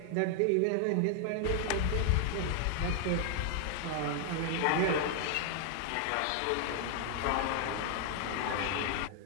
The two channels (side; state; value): both; different; correlation 0.00